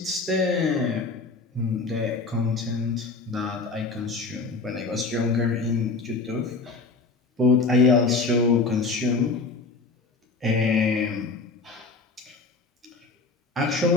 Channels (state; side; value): quieter; right; 4.0 dB